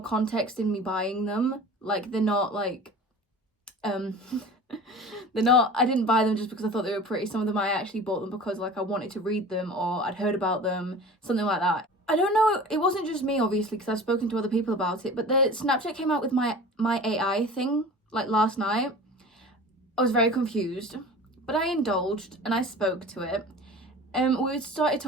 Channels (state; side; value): normal; both; correlation 0.39